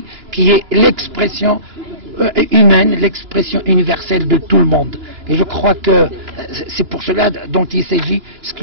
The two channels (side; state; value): left; late; 2.9 ms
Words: qui est l'expression humaine, l'expression universelle de tout le monde. Et je crois que c'est pour cela dont il s'agit, ce que